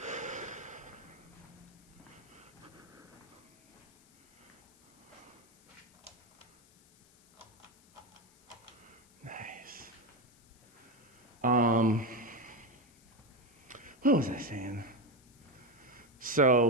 What was I saying?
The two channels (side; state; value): left; noise; hiss, 28 dB below the sound